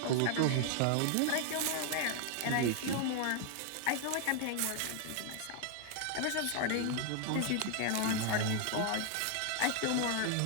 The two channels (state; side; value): different; both; correlation 0.00